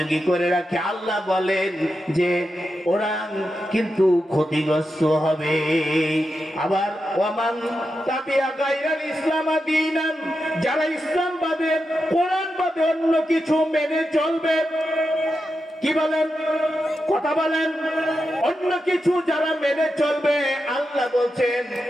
করে রাখে, আল্লাহ বলেন যে ওরা কিন্তু ক্ষতিগ্রস্ত হবে। আবার ওয়ামান তাবিয়া গায়রাল ইসলাম দীনান, যারা ইসলাম বাদে, কোরআন বাদে অন্য কিছু মেনে চলবে, কি বলেন? কথা বলেন। অন্য কিছু যারা মেনে চলবে, আল্লাহ বলছেন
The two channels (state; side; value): normal; both; correlation 0.88